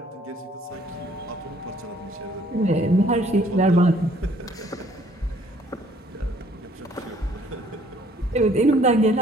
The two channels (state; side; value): normal; both; correlation 0.61